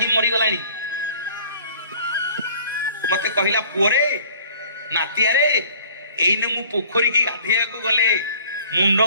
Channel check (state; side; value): inverted; both; correlation -0.52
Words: मरी गलानी। मते कहिला पुअरे नातिया रे एइने मु पोखरी की गाधेया को गले मुंड